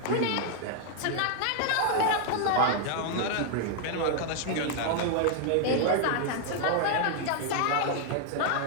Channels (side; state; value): both; different; correlation 0.00